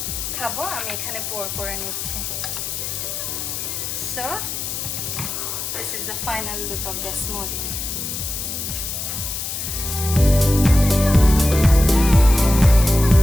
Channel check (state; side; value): noise; left; hiss, 5 dB below the sound